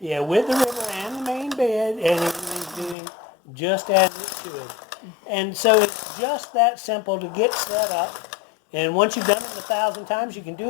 with the ribber and the main bed, and it is doing just as it should. And so it's just that simple to get set up. And once you've done it 1,000 times, you can do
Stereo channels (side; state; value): right; drops out; at 3.0 s